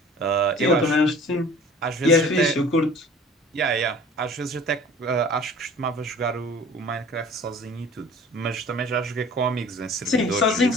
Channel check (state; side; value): normal; both; correlation 0.46